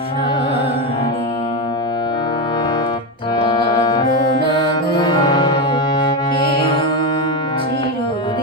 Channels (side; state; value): both; normal; correlation 0.12